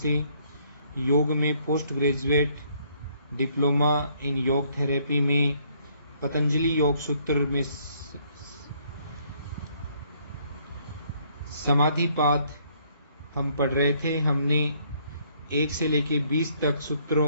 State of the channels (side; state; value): both; inverted; correlation -0.66